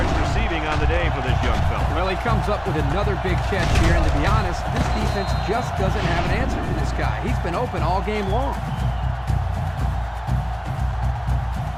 receiving on the day for this young fella. Well, he comes up with another big catch here, and to be honest, this defense just doesn't have an answer for this guy. He's been open all game long.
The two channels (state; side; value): identical; both; correlation 1.00